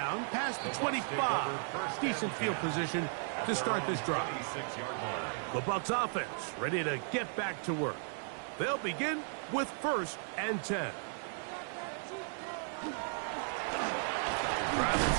past the 25. Decent field position to start this drive. The Bucs offense ready to get back to work. They'll begin with 1st and 10. Travis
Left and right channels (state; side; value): silent; left; 54 dB below the other